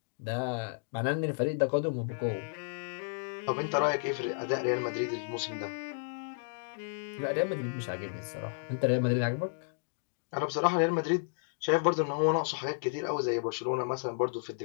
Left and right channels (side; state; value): right; silent; digital silence